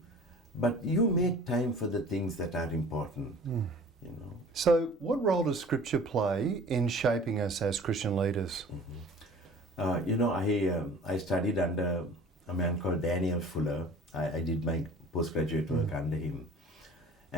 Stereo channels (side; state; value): both; normal; correlation 0.46